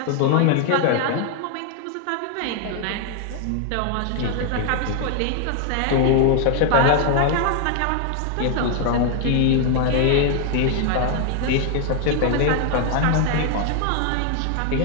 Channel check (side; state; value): both; different; correlation 0.00